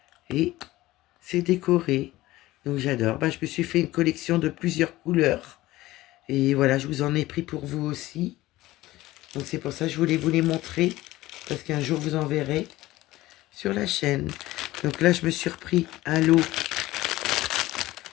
Et c'est décoré. Donc j'adore. Bah, je me suis fait une collection de plusieurs couleurs. Et voilà, je vous en ai pris pour vous aussi. Donc c'est pour ça que je voulais vous les montrer. Parce qu'un jour vous en verrez sur la chaîne. Donc là, je me suis repris un lot.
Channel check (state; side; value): quieter; right; 17.4 dB